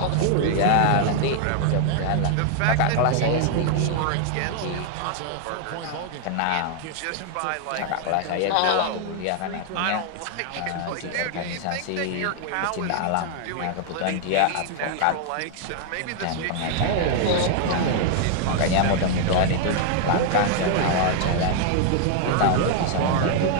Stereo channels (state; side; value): different; both; correlation 0.00